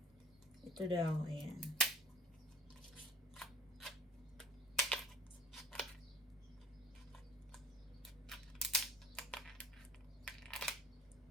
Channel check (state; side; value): normal; both; correlation 0.51